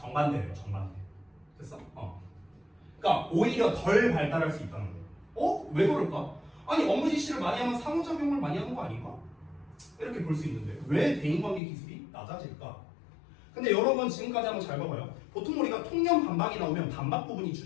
정반대. 됐어? 그러니까 오히려 덜 발달할 수 있다는 거예요. 왜 그럴까? 업무 지시를 많이 하면 상호작용을 많이 하는 거 아닌가? 이렇게 볼 수 있는데 왜 대인관계 기술이 낮아질까? 근데 여러분 지금까지 한번 잘 봐봐요. 보통 우리가 통념 반박이 나오면 반박 부분이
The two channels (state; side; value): drops out; right; at 11.6 s